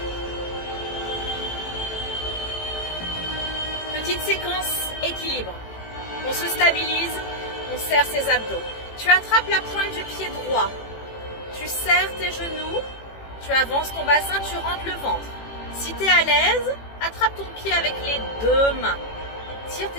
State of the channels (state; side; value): late; right; 18 ms